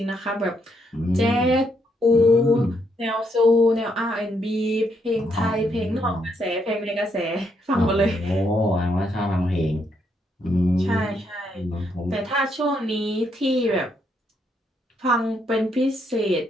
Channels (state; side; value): normal; both; correlation 0.75